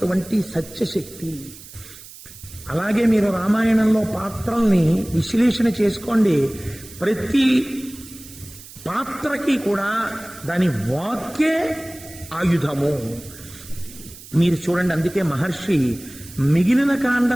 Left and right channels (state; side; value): noise; right; hiss, 18 dB below the sound